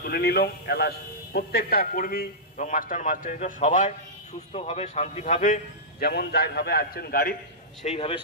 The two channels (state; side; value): normal; both; correlation -0.14